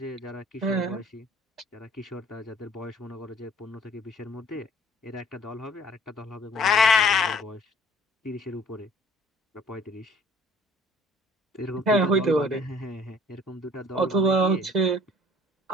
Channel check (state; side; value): normal; both; correlation 0.54